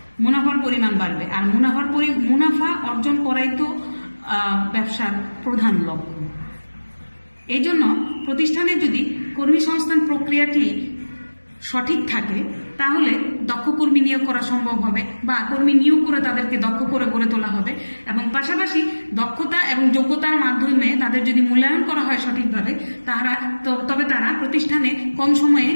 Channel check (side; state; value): both; inverted; correlation -1.00